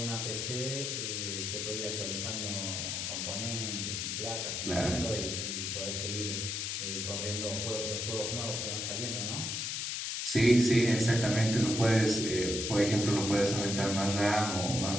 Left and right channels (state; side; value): noise; left; hiss, 2 dB below the sound